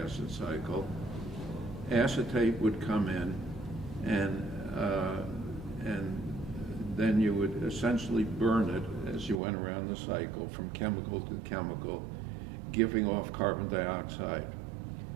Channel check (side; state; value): left; drops out; at 9.4 s